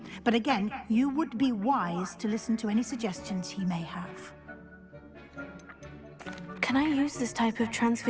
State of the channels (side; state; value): both; identical; correlation 1.00